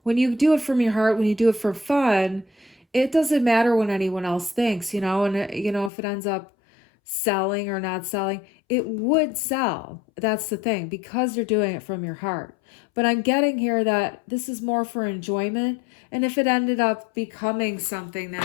When you do it from your heart, when you do it for fun, it doesn't matter what anyone else thinks, you know, and, you know, if it ends up selling or not selling, it would sell. That's the thing, because you're doing it from your heart. But I'm getting here that this is more for enjoyment. And if it ended up becoming something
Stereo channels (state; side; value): drops out; right; at 5.9 s